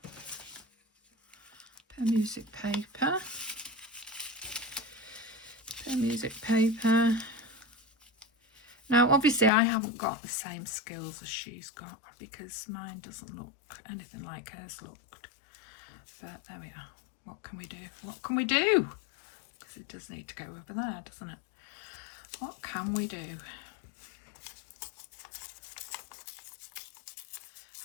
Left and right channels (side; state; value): right; drops out; at 9.5 s